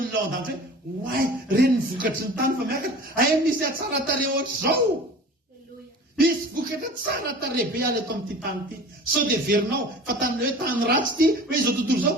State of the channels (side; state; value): both; normal; correlation 0.41